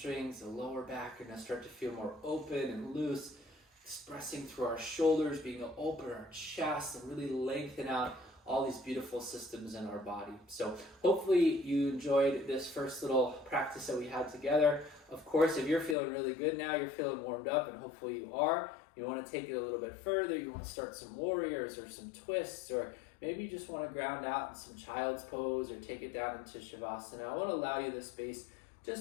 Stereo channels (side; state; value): right; drops out; at 16.0 s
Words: the lower back are going to start to feel more open and loose, expressing through our shoulders, being open our chest, and really lengthen out all these beautiful systems in our body. So hopefully you enjoyed this first little practice that we had together. Of course, if you're feeling really good now, you're feeling warmed up, and hopefully you are, you want to take it a little bit further, you want to start some warriors or some twists, or maybe you just want to ground out in some child's pose or take it down into Shavasana. I want to allow you this space